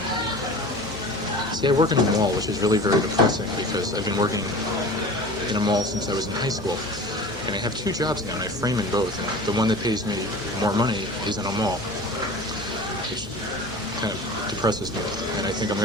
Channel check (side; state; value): both; normal; correlation 0.37